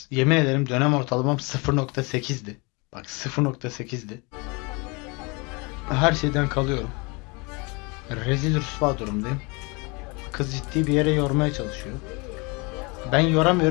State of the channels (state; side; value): quieter; right; 28.7 dB